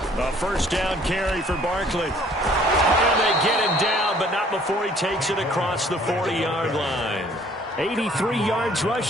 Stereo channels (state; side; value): normal; both; correlation 0.57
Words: A first down carry for Barkley. And they get him down, but not before he takes it across the 40-yard line. 83 yards